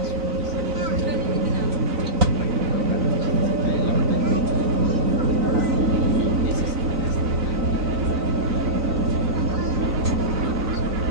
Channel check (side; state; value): left; late; 3.9 ms